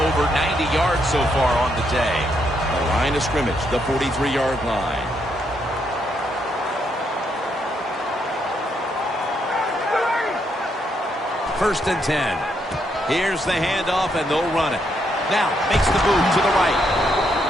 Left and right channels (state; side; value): normal; both; correlation 0.76